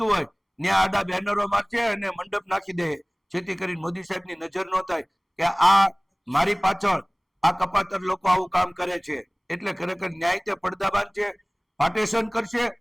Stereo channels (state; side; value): identical; both; correlation 1.00